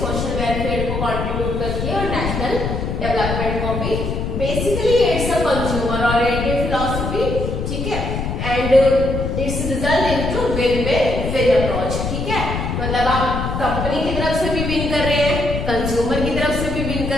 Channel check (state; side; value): noise; left; rumble, 3 dB below the sound